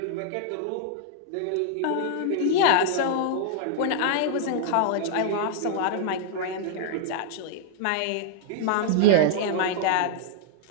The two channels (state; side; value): different; both; correlation -0.01